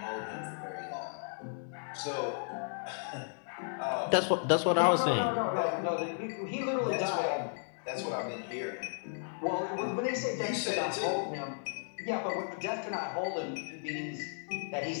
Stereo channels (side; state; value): right; silent; digital silence